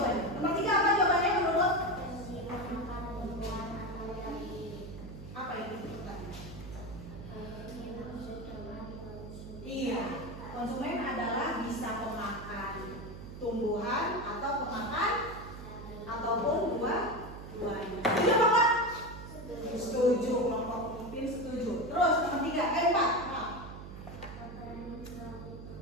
Nomor 3 apa jawabannya menurut? Apa itu pertanyaan? Iya, konsumen adalah bisa pemakan tumbuhan atau pemakan ataupun buah-buahan. Setuju apa Pak? Setuju, kelompok Upin setuju. Terus nomor 3,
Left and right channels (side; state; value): right; noise; hum, 12 dB below the sound